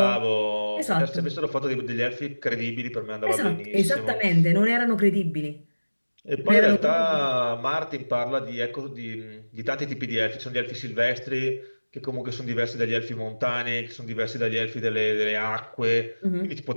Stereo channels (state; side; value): inverted; both; correlation -1.00